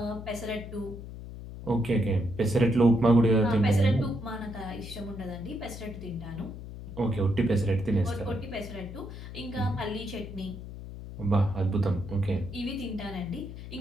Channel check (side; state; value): left; noise; hum, 11 dB below the sound